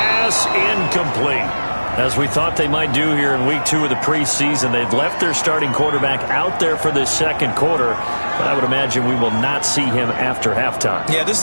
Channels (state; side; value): inverted; both; correlation -1.00